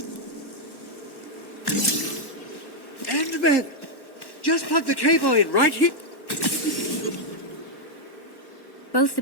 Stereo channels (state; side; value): late; right; 1.1 ms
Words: Endman! Just plug the cable in right here. Both the